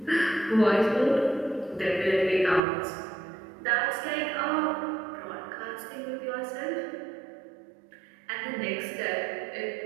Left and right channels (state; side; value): drops out; left; at 2.6 s